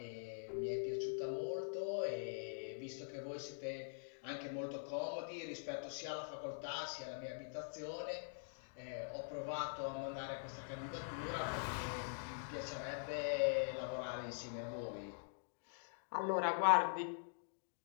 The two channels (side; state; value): right; silent; digital silence